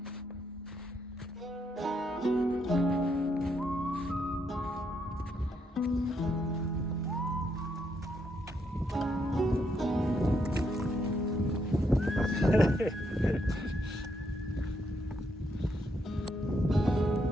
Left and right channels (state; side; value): normal; both; correlation 0.77